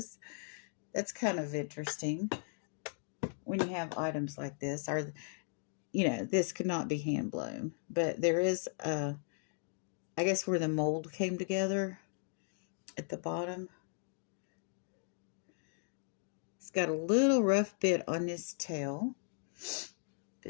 That's kind of interesting when you have items like this. Or, this could not be hand blown, but there is, I guess, where the mold came together at the bottom. It's got a little rough bit on his tail.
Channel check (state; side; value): silent; right; digital silence